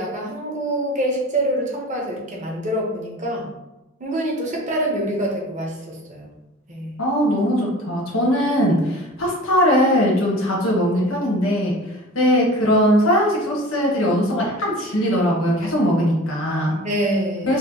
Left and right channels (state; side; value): normal; both; correlation 0.40